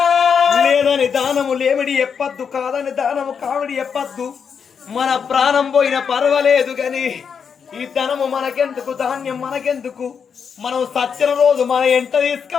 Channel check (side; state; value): right; quieter; 6.7 dB